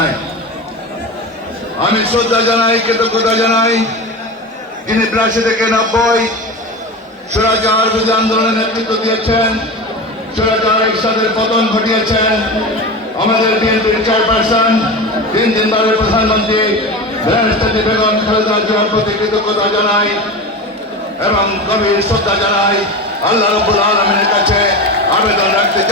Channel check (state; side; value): normal; both; correlation 0.26